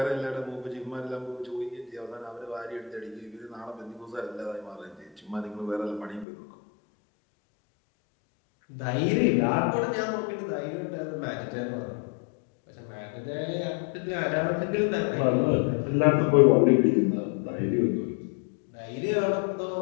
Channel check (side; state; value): right; drops out; at 6.2 s